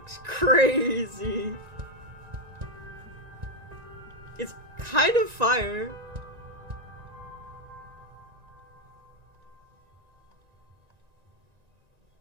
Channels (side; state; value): left; late; 1.9 ms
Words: crazy. It's kind of fire.